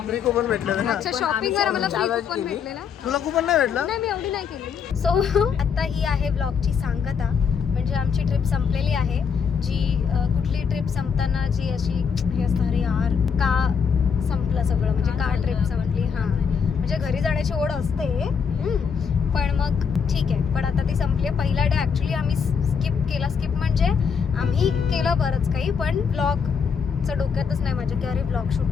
फ्री कुपन भेटलेलं ना. अच्छा शॉपिंग वर आम्हाला फ्री कुपन भेटलेला. तुला कुपन नाही भेटलं? नाही मी एवढी नाही केली. सो आता ही आहे ब्लॉगची सांगता. म्हणजे आमची ट्रिप संपलेली आहे. जी कुठली ट्रिप संपताना जी अशी हे असतं अरे यार का संपलं सगळं म्हणजे का ट्रिप संपली. हां म्हणजे घरी जाण्याची ओढ असते पण मग ठीक आहे. पण आता ती संपली आहे. पहिला डे ॲक्च्युली आम्ही स्किप म्हणजे आम्ही केलं बरंच काही पण ब्लॉगचं डोक्यातच नाही माझ्या की अरे ब्लॉग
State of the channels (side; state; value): right; quieter; 6.5 dB